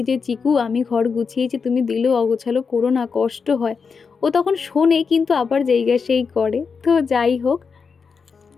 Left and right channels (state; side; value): quieter; right; 5.5 dB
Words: যে চিকু আমি ঘর গুছিয়েছি তুমি দিলেও অগোছালো করো না, কষ্ট হয়, ও তখন শোনে কিন্তু আবার জায়গা সেই করে। তো যাই হোক,